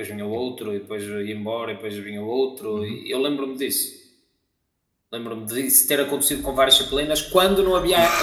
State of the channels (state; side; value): identical; both; correlation 1.00